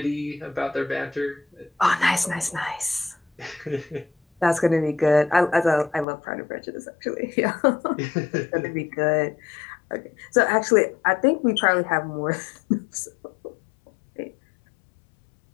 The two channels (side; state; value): right; drops out; at 6.1 s